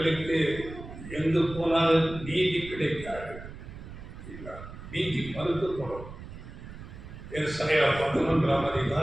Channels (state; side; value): noise; right; rumble, 13 dB below the sound